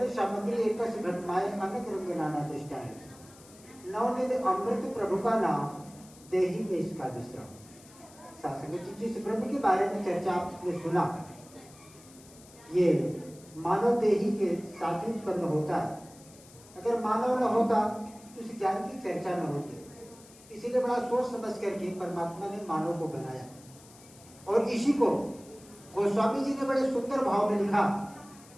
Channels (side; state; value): left; noise; hiss, 23 dB below the sound